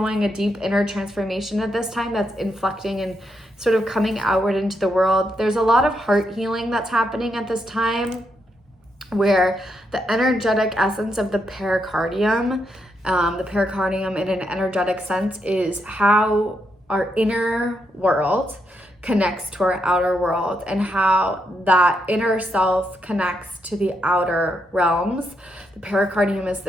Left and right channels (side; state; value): both; normal; correlation 0.80